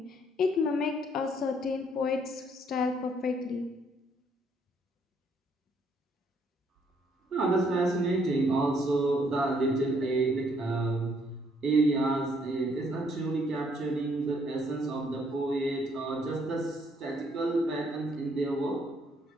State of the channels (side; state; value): both; normal; correlation 0.68